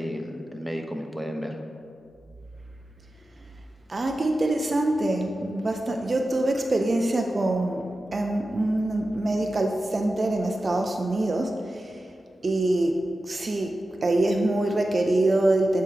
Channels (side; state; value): both; normal; correlation 0.93